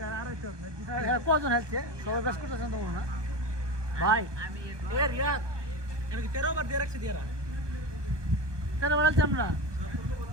কজন হেলছে সবাই বেশ করতেছেন তো না ভাই এ রিয়াদ এর 13 বার দিয়ে রাখছি দিয়ারা কেন বলছি আমরা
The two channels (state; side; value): late; left; 1.2 ms